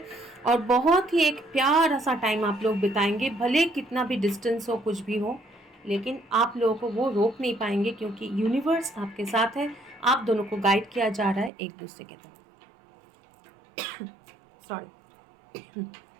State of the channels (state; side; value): drops out; left; at 11.5 s